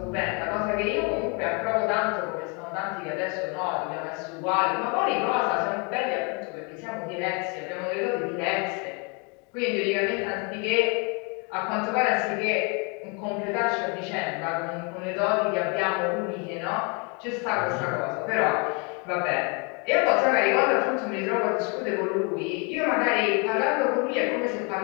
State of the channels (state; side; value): quieter; right; 33.5 dB